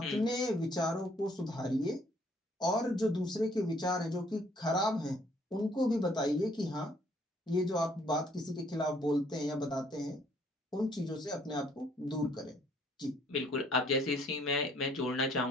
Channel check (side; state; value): both; normal; correlation 0.63